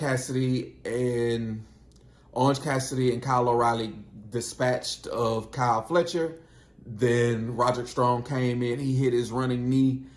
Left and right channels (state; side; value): identical; both; correlation 1.00